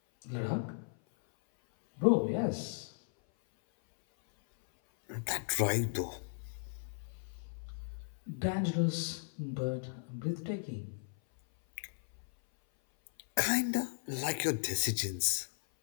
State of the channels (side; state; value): right; silent; 54 dB below the other